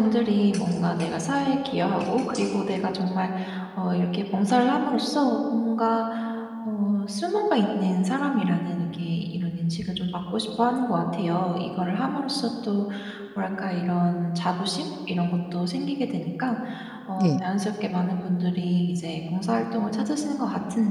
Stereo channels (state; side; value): identical; both; correlation 1.00